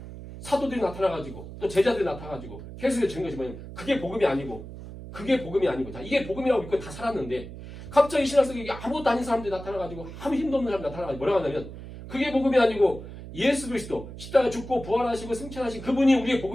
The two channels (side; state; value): right; noise; hum, 12 dB below the sound